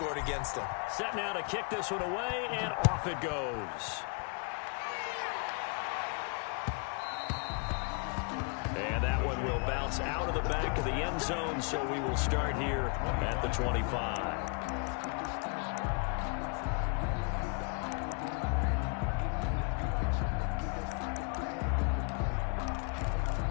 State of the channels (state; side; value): quieter; right; 37.1 dB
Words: against them. Set now to kick this one away, and off it goes. And that one will bounce out of the back of the end zone, so we will start here at the 25.